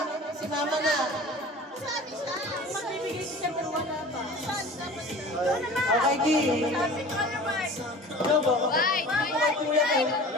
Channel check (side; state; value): both; normal; correlation 0.40